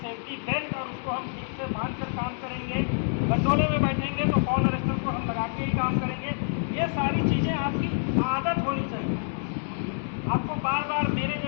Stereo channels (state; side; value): silent; right; digital silence